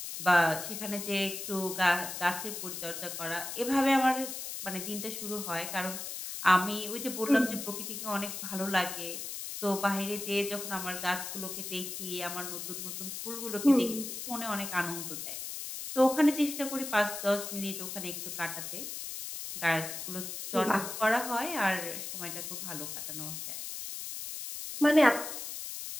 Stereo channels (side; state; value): left; noise; hiss, 7 dB below the sound